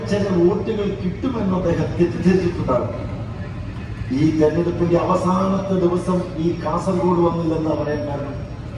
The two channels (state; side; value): identical; both; correlation 1.00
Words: ചില വോട്ടുകൾ കിട്ടുമെന്ന് അദ്ദേഹം തെറ്റിദ്ധരിച്ചിട്ടുണ്ടാകും. ഈ തെരഞ്ഞെടുപ്പിന്റെ അവസാനത്തെ ദിവസം ഈ കാസർഗോഡ് വന്നില്ലെന്ന് പറയാൻ കാരണം,